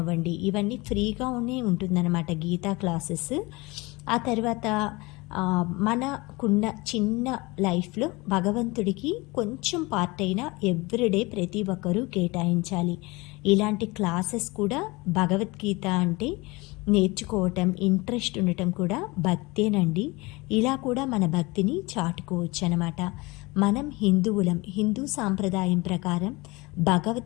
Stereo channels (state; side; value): quieter; right; 24.0 dB